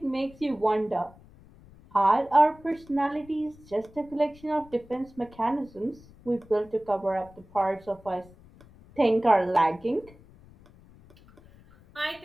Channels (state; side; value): noise; left; rumble, 24 dB below the sound